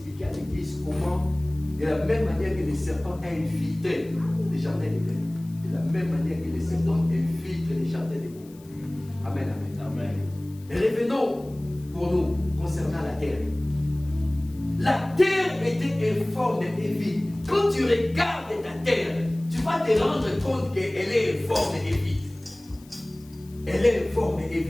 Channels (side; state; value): left; noise; hiss, 26 dB below the sound